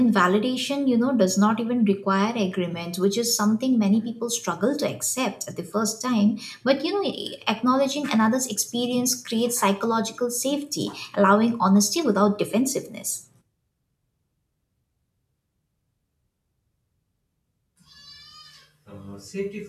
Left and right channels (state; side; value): identical; both; correlation 1.00